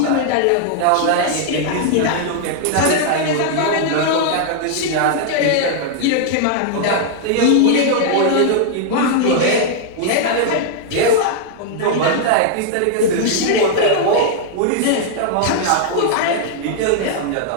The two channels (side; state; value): both; different; correlation -0.01